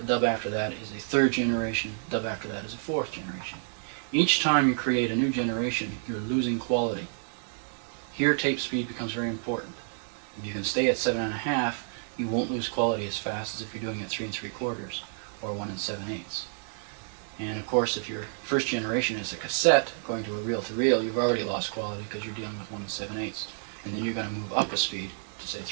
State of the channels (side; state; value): left; silent; digital silence